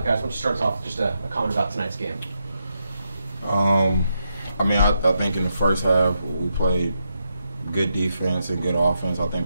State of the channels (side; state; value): both; inverted; correlation -0.83